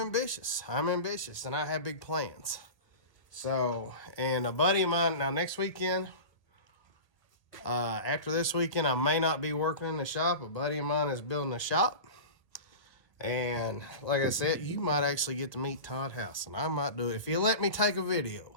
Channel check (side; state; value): right; late; 1.3 ms